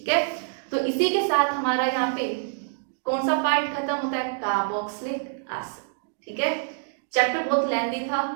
है, तो इसी के साथ हमारा यहाँ पे कौन सा पार्ट खत्म होता है, कार्बोक्सिलिक एसिड। ठीक है, चैप्टर बहुत लेंथी था,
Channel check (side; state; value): left; silent; digital silence